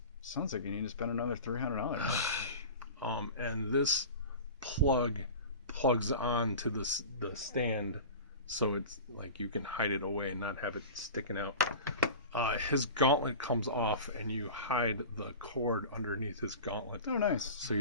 Sounds like you need to spend another $300. And this plugs on to the stand, so it's like you can hide it away and not have it sticking out. His gauntlet comes off, and you hide the cord underneath his gauntlet. Oh, nice. So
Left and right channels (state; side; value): inverted; both; correlation -0.33